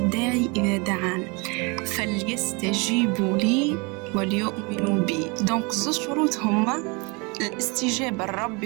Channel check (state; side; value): quieter; left; 29.5 dB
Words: إذا دعان فليستجيبوا لي وليؤمنوا بي. دونك زوج شروط هما الاستجابة